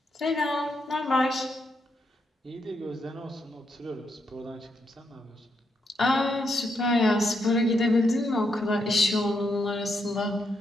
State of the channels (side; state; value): both; normal; correlation 0.80